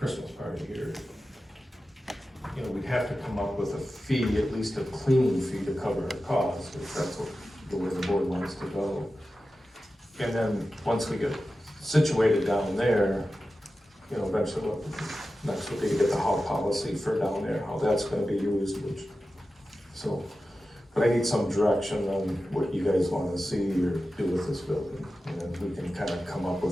party here. You know, we'd have to come up with a fee, at least a cleaning fee to cover our costs, if that's what, the way the board wants to go. And then, once we get situated down there, you know, eventually, next would be to get the hall policy for down there, how that's gonna be used, which, so, but I need some direction on what you guys wanna see or do with this building. And then we can kind of come up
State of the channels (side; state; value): both; normal; correlation 0.93